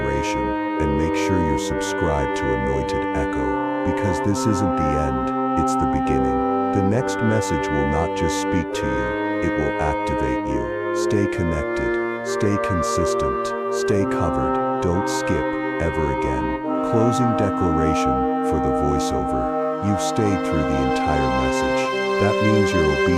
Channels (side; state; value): both; identical; correlation 1.00